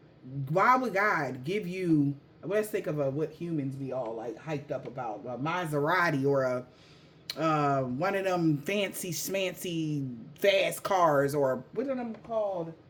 Why would God give you, let's think of what humans be all like hyped up about, a Maserati or one of them fancy schmancy fast cars, or what are them called,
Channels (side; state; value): both; identical; correlation 1.00